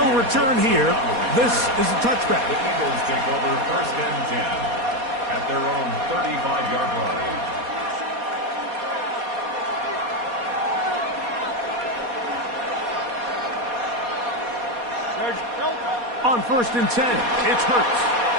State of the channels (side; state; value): left; late; 4.2 ms